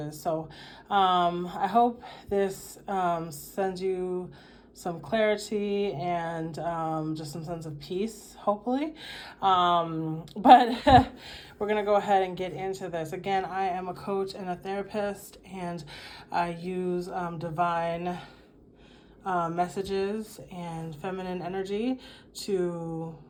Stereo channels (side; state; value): both; identical; correlation 1.00